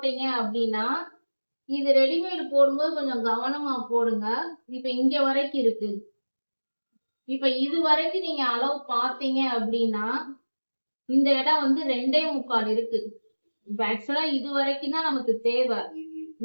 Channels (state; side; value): inverted; both; correlation -1.00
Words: அப்படின்னா, இது ரெடிமேட் போடும்போது கொஞ்சம் கவனமா போடுங்க. இப்ப இங்க வரைக்கும் இருக்கு. இப்ப இது வரைக்கும் நீங்க அளவு பார்த்தீங்க அப்படின்னா இந்த இடம் வந்து 2.25 இருக்கு. இப்ப ஆக்சுவலா இது வரைக்கும் தான் நமக்கு தேவை